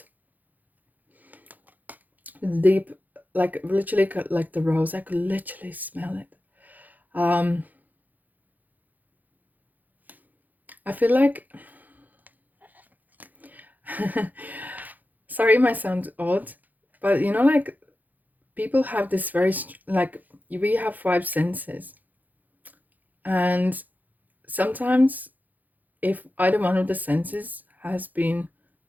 It's deep, like literally like the rose. I could literally smell it. I feel like sorry, it might sound odd, but you know, like people have this very like we have 5 senses, and sometimes if either one of the senses has been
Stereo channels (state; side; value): late; left; 0.083 ms